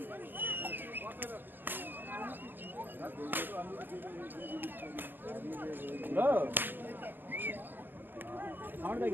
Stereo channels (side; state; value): left; late; 0.094 ms